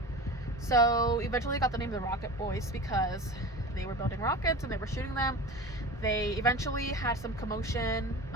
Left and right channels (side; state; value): both; normal; correlation 0.32